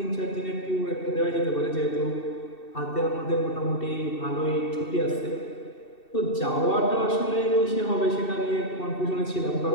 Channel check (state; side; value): late; right; 2.7 ms